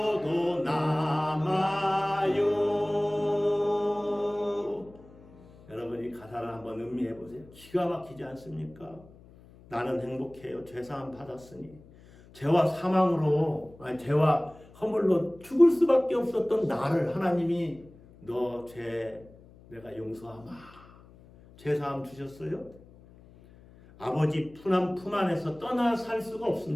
남아요. 여러분, 음미해 보세요. 기가 막히지 않습니까? 나는 행복해요. 죄사함 받았으니. 죄와 사망으로, 죄와 허물로 죽을 수밖에 없었던 나를 하나님이 너 죄 내가 용서하마. 죄사함 주셨어요? 아버지 품 안에서 떠나 살 수가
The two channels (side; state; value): left; noise; hum, 23 dB below the sound